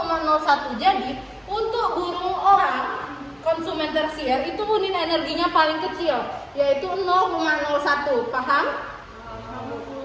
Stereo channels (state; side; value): identical; both; correlation 1.00